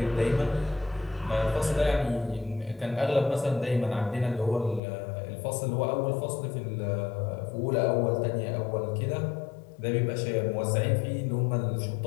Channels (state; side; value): drops out; right; at 4.8 s